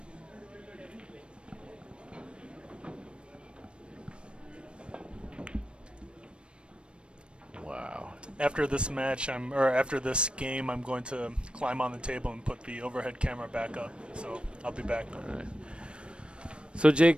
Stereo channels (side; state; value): left; late; 0.057 ms